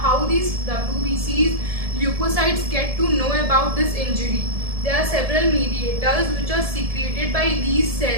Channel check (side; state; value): left; late; 1.7 ms